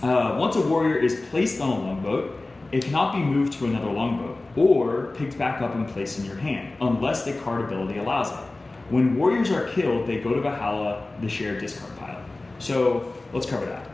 once a warrior is placed on a longboat, it cannot be moved to another longboat or picked back up and placed in your hand unless the card ability allows it. When warriors are killed, they go to Valhalla, the shared discard pile. So let's cover that.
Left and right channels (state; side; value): quieter; right; 3.1 dB